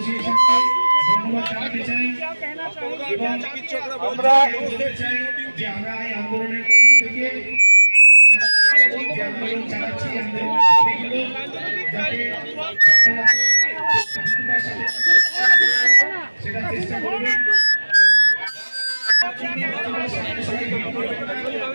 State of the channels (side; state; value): both; inverted; correlation -1.00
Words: ধন্যবাদ জানাতে চাই এবং আমরা বলতে চাই যে আমরা এই আন্দোলনের মঞ্চ থেকে আন্দোলন চালাচ্ছি, সেটা চেষ্টা করবেন।